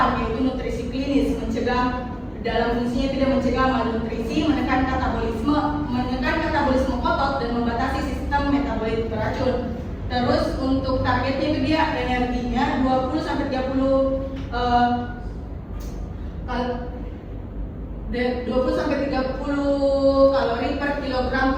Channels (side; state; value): both; identical; correlation 1.00